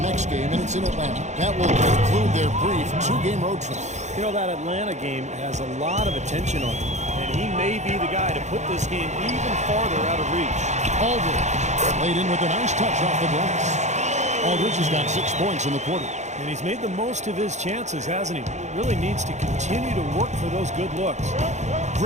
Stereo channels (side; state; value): left; late; 0.34 ms